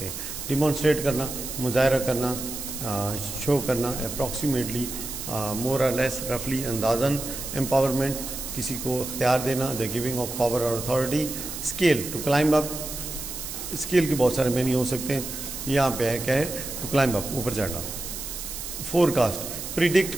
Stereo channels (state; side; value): noise; right; hiss, 8 dB below the sound